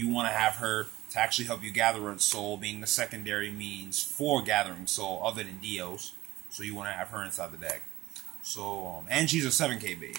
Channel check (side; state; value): left; quieter; 16.9 dB